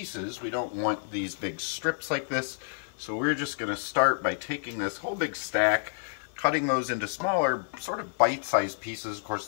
We don't want these big strips like this, so we're just going to start by taking this whole big stack, cutting those into smaller, sort of bite-sized pieces. Of course,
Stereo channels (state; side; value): silent; right; digital silence